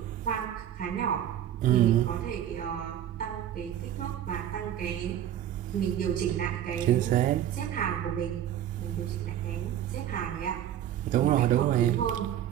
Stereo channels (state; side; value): quieter; left; 10.9 dB